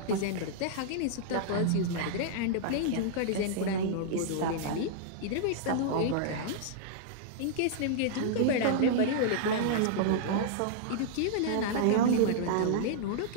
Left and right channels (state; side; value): different; both; correlation -0.02